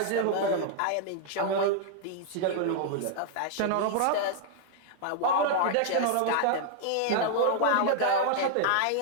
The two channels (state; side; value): different; both; correlation -0.01